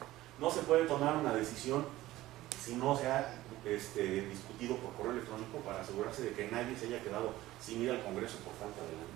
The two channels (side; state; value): left; quieter; 16.3 dB